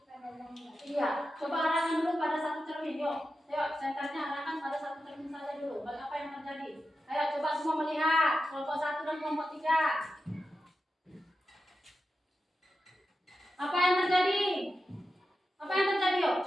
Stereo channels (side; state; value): both; normal; correlation 0.91